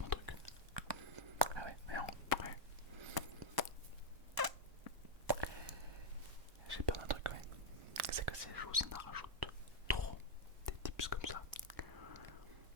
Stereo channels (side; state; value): left; late; 1.0 ms